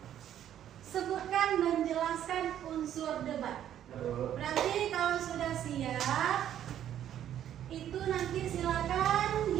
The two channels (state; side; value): quieter; left; 10.8 dB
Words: sebutkan dan jelaskan unsur debat. Berarti kalau sudah siap, itu nanti silakan